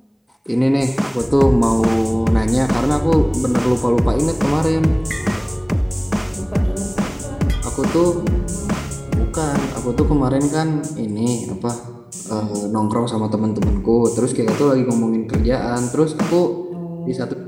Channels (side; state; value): both; identical; correlation 1.00